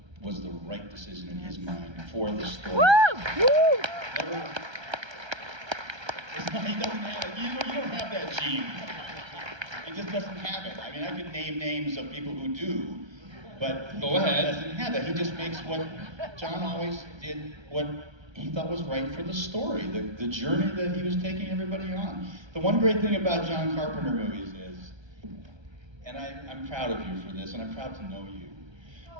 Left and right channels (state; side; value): late; left; 1.3 ms